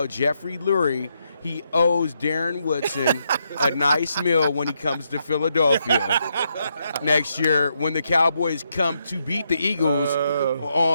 Jeffrey Lurie he owes Darren Woodson a nice meal when he comes to Philadelphia next year when the Cowboys come to beat the Eagles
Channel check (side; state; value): both; inverted; correlation -0.79